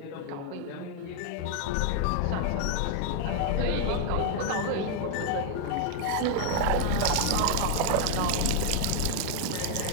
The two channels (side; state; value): both; different; correlation 0.00